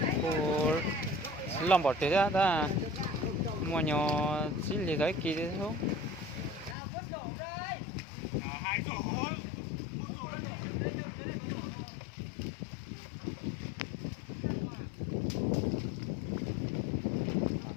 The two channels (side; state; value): right; drops out; at 6.8 s